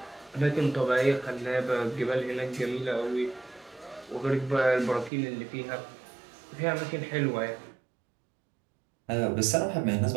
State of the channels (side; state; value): left; drops out; at 5.1 s